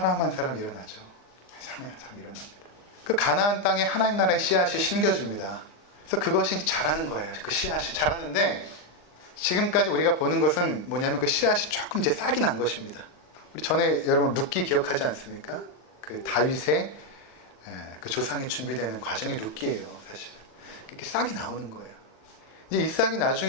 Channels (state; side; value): late; right; 39 ms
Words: 한 사람 일어나죠. 한 사람 한 사람 일어납니다. 그 가나안 땅에 하나님 나라의 씨앗이 심겨집니다. 그래서 그것이 자라는 거예요. 그 씨앗이 자라는데 지금까지 우리가 보는 것은 뭐냐면 그 씨앗이 조금 이제 싹이 난 것입니다. 우리 전에 여러분 룻기 기억하지 않습니까? 그 다윗의 그 조상이 준비되는 과정이 룻기예요, 사실. 이렇게 싹이 나오는 거예요. 이제 이 싹이